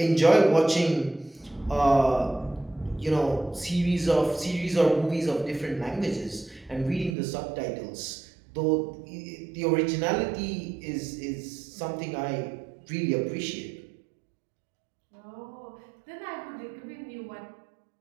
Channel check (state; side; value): drops out; left; at 7.2 s